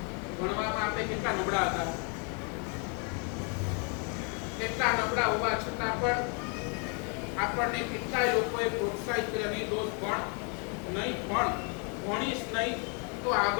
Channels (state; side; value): quieter; right; 37.6 dB